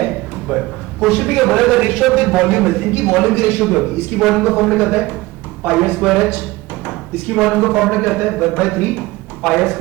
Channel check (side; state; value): left; quieter; 20.0 dB